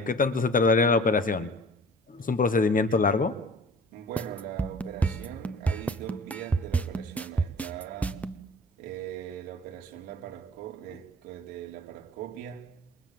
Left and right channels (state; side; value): normal; both; correlation 0.45